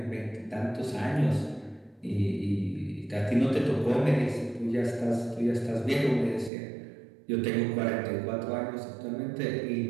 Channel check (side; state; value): left; drops out; at 6.5 s